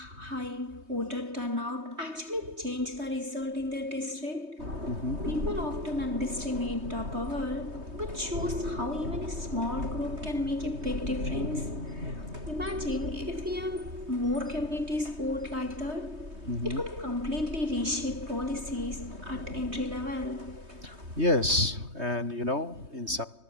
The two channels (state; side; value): late; left; 3.2 ms